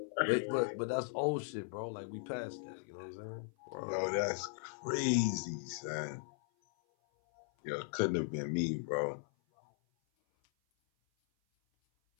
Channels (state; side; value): silent; right; 53 dB below the other